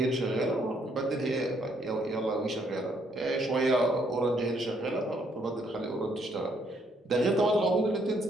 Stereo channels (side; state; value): both; normal; correlation 0.70